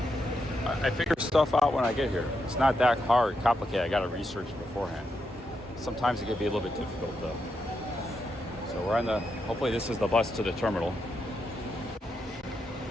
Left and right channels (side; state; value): both; normal; correlation 0.83